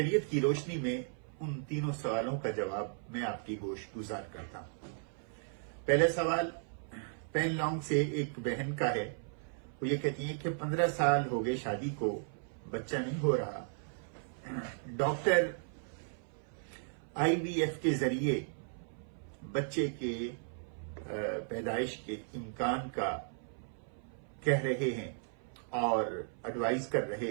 کی روشنی میں ان تینوں سوالوں کا جواب میں آپ کی گوش گزار کرتا ہوں۔ پہلا سوال پین لانگ سے ایک بہن کا ہے۔ وہ یہ کہتی ہیں کہ 15 سال ہو گئے شادی کو، بچہ نہیں ہو رہا۔ ڈاکٹر IVF کے ذریعے بچے کے پیدائش کے امکان کا کہہ رہے ہیں اور ایڈوائز کر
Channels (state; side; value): silent; left; 54 dB below the other